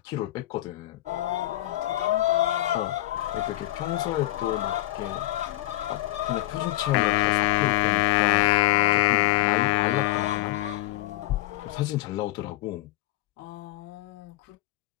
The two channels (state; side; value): quieter; right; 16.1 dB